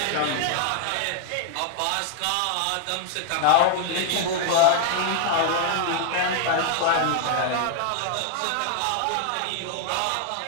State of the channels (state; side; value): different; both; correlation 0.00